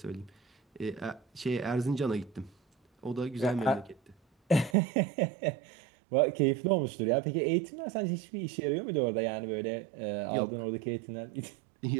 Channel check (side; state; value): left; drops out; at 4.8 s